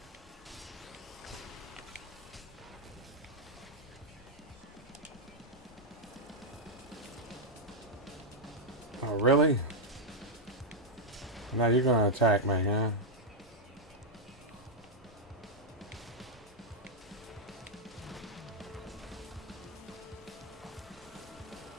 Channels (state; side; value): normal; both; correlation -0.02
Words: Oh, really? Now you're gonna attack me, huh?